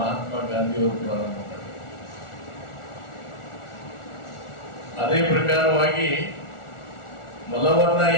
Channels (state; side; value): late; right; 1.4 ms